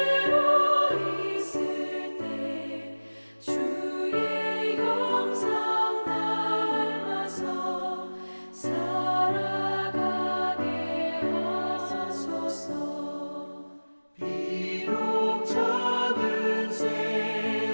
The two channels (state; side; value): inverted; both; correlation -1.00